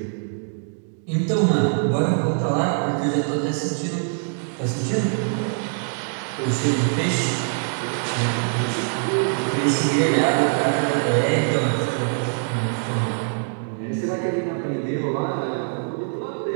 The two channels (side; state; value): left; silent; 63 dB below the other